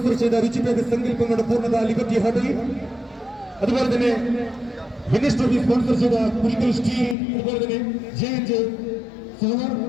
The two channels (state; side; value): drops out; right; at 7.2 s